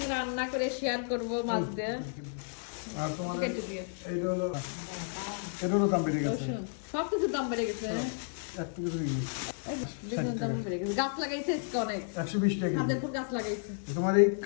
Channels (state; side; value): silent; right; digital silence